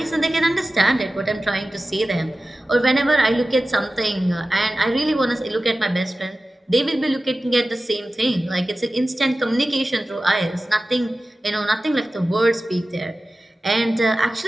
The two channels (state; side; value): normal; both; correlation 0.95